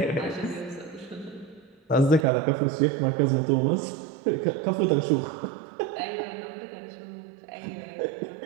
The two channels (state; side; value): drops out; left; at 2.2 s